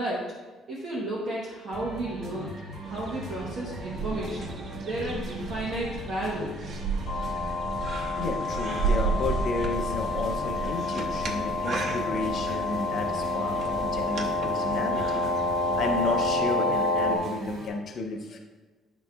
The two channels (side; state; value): both; normal; correlation 0.49